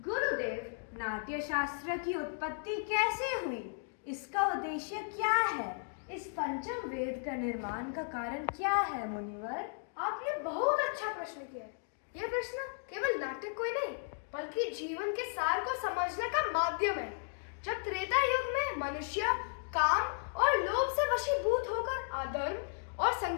गुरुदेव, नाट्य शास्त्र की उत्पत्ति कैसे हुई? इसका उद्देश्य क्या है? इस पंचम वेद का निर्माण का कारण क्या है मुनिवर? आपने बहुत अच्छा प्रश्न किया। यह प्रश्न केवल नाटक कोई नहीं बल्कि जीवन के सार को समझने का माध्यम है। जब त्रेता युग में मनुष्य काम और लोभ से वशीभूत होकर अधर्म और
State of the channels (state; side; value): silent; right; digital silence